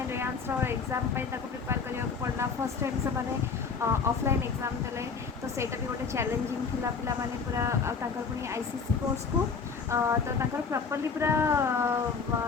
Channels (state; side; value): quieter; right; 5.3 dB